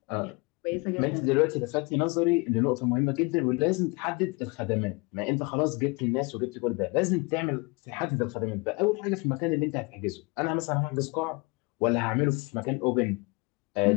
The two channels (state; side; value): quieter; right; 28.3 dB